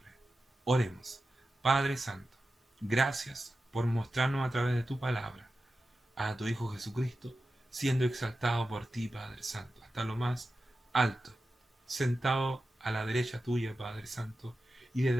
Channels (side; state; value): both; normal; correlation 0.92